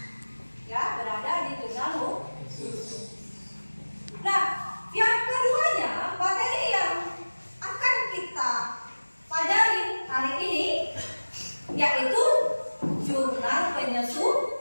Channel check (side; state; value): both; inverted; correlation -1.00